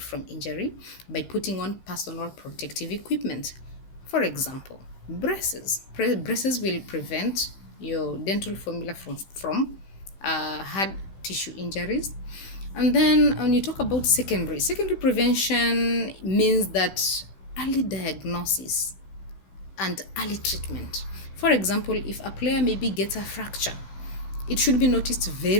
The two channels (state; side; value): late; right; 15 ms